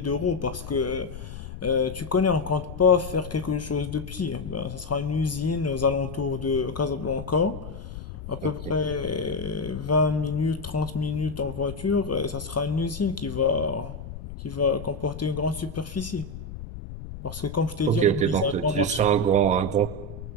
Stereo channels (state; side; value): noise; left; rumble, 11 dB below the sound